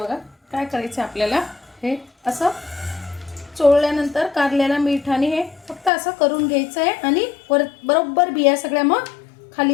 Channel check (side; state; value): right; drops out; at 5.9 s